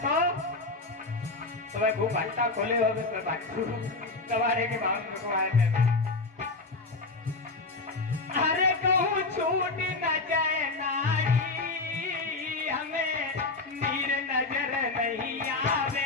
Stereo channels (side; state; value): right; quieter; 3.4 dB